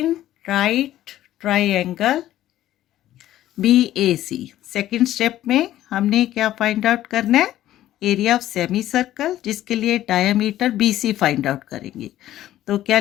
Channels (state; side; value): quieter; right; 13.5 dB